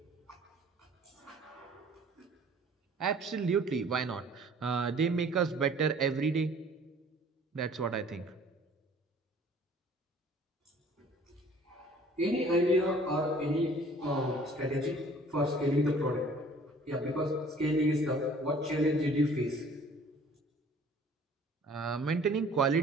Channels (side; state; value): both; normal; correlation 0.53